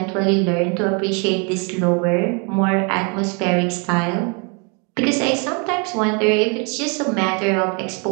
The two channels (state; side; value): quieter; left; 34.5 dB